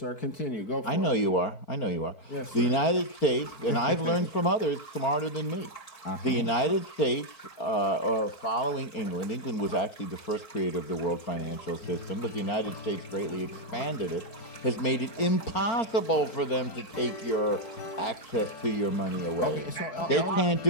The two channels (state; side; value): late; right; 4.6 ms